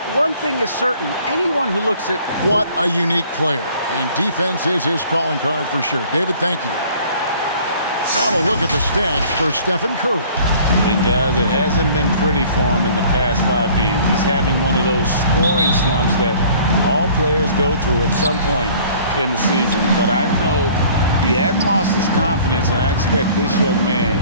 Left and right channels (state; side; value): inverted; both; correlation -0.52